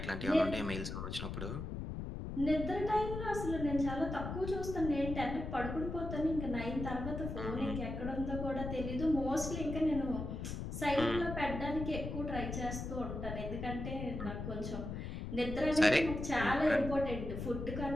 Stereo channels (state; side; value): noise; left; rumble, 5 dB below the sound